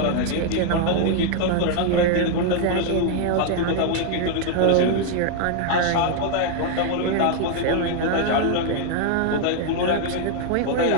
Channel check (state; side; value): different; both; correlation 0.00